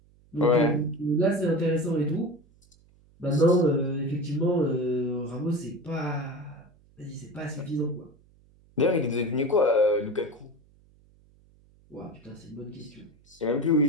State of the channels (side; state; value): right; noise; hum, 30 dB below the sound